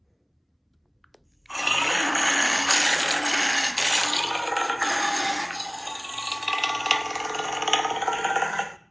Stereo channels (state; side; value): identical; both; correlation 1.00